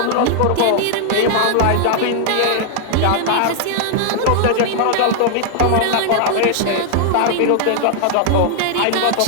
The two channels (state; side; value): different; both; correlation -0.01